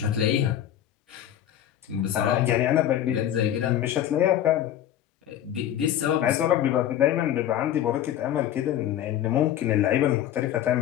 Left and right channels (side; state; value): right; quieter; 11.3 dB